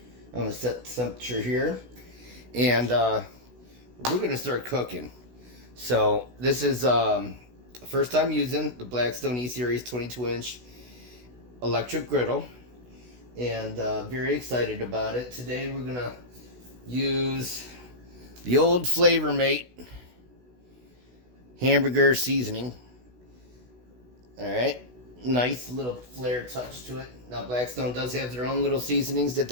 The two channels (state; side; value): late; left; 16 ms